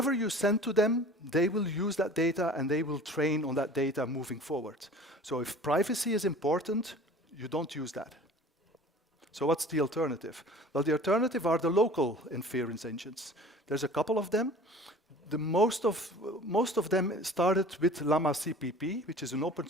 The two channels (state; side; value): normal; both; correlation 0.45